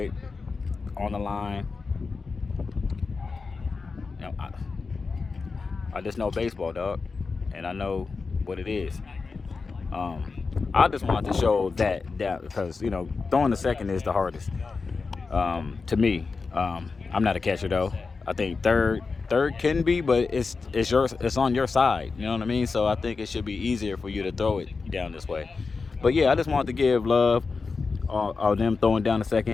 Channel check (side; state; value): right; quieter; 4.5 dB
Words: on the line. You know, I just know baseball, dog, and I know what it is. I just wanted to show that because throwing the second is the hardest to me. I'm not a catcher though. I think third can be, but it's on your side. You know what I mean? So I think it should be easier for you to throw it down this way. But yeah, I just wanted to give love of them throwing down the